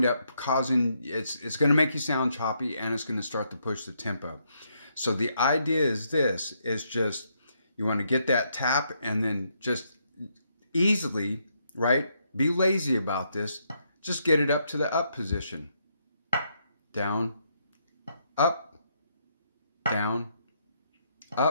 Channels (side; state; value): both; inverted; correlation -0.76